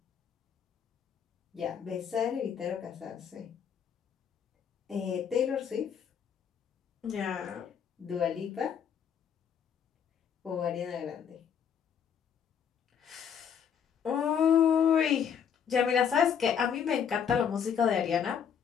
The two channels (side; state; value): right; quieter; 7.8 dB